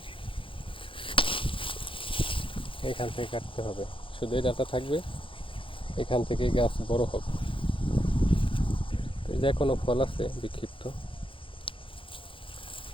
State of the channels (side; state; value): right; late; 0.25 ms